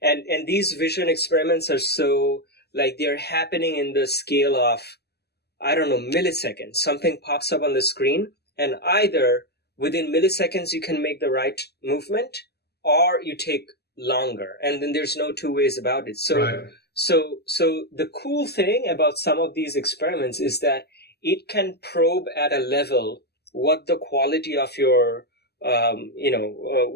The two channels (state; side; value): late; right; 0.47 ms